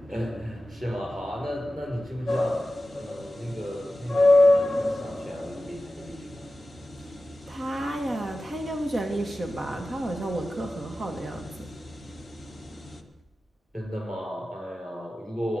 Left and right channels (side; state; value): both; normal; correlation 0.94